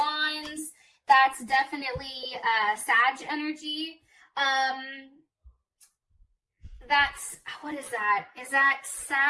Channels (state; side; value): identical; both; correlation 1.00